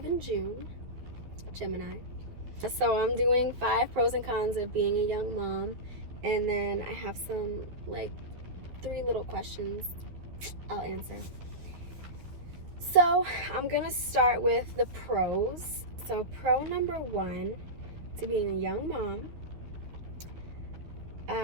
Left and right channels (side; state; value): left; late; 12 ms